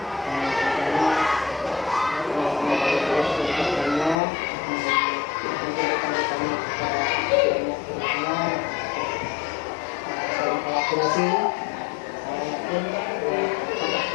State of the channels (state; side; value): drops out; right; at 4.2 s